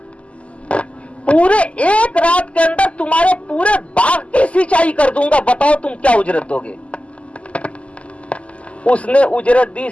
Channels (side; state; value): right; late; 0.061 ms